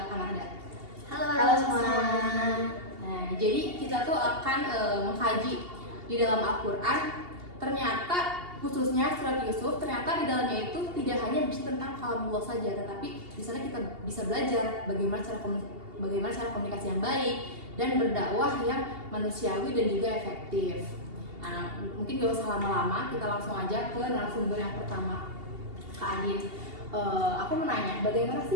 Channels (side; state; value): left; late; 2.8 ms